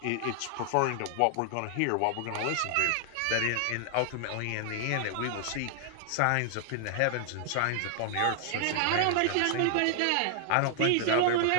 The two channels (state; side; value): different; both; correlation 0.00